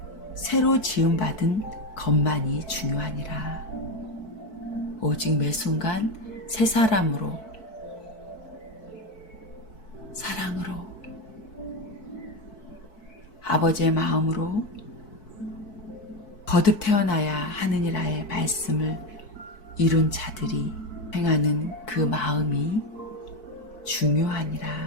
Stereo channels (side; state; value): right; late; 4.6 ms